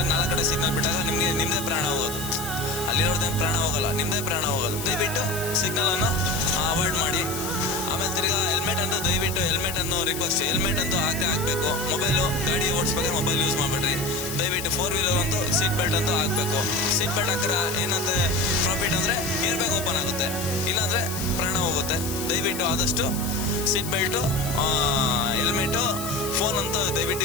4 ಕಡೆ ಸಿಗ್ನಲ್ ಬಿಟ್ಟಾಗ ನಿಮ್ದೇ ಪ್ರಾಣ ಹೋಗೋದು. ಅಲ್ಲಿರೋದೇನು ಪ್ರಾಣ ಹೋಗಲ್ಲ, ನಿಮ್ದೇ ಪ್ರಾಣ ಹೋಗೋದು. ದಯವಿಟ್ಟು ಸಿಗ್ನಲ್ ಅನ್ನು ಅವಾಯ್ಡ್ ಮಾಡಿ. ಆಮೇಲೆ ತಿರ್ಗಾ ಹೆಲ್ಮೆಟ್ ಅಂತ ದಯವಿಟ್ಟು ಹೆಲ್ಮೆಟ್ ಅನ್ನು ರಿಕ್ವೆಸ್ಟ್, ಹೆಲ್ಮೆಟ್ ಅಂತೂ ಹಾಕಬೇಕು. ಮೊಬೈಲು ಗಾಡಿ ಓಡಿಸ್ಬೇಕಾದ್ರೆ ಮೊಬೈಲ್ ಯೂಸ್ ಮಾಡಬೇಡ್ರಿ. ದಯವಿಟ್ಟು 4 ವೀಲರ್ ಅಂತೂ ಸೀಟ್ ಬೆಲ್ಟ್ ಅಂತೂ ಹಾಕಬೇಕು. ಸೀಟ್ ಬೆಲ್ಟ್ ಹಾಕಿದ್ರೆ ಏನಂತ ಪ್ರಾಫಿಟ್ ಅಂದರೆ ಏರ್ ಬ್ಯಾಗ್ ಓಪನ್ ಆಗುತ್ತೆ, ಇಲ್ಲಾಂದರೆ ಪ್ರಾಣ ಹೋಗುತ್ತೆ. ದಯವಿಟ್ಟು ಆದಷ್ಟು ಸೀಟ್ ಬೆಲ್ಟು, ಹೆಲ್ಮೆಟು, ಫೋನ್ ಅಂತೂ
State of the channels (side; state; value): left; noise; hiss, 8 dB below the sound